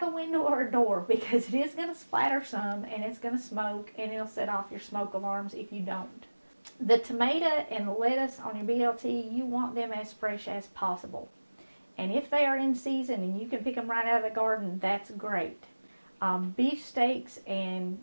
a window or a door, because it is going to splatter some and it's going to smoke, and it'll set off your smoke alarms if you don't. The tomato and the lettuce on your BLT, you want them as fresh as possible. And if they are in season and you can pick them right out of the garden, that's great. Beef steaks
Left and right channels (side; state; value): both; inverted; correlation -1.00